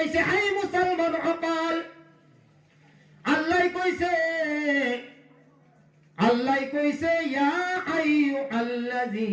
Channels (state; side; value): identical; both; correlation 1.00